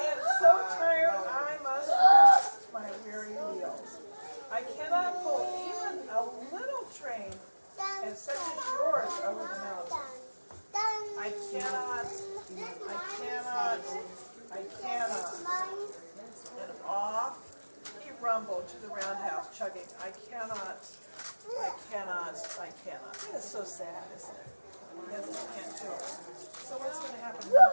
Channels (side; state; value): both; inverted; correlation -1.00